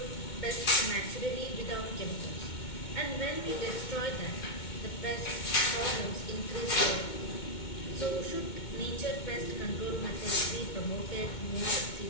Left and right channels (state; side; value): late; right; 2.2 ms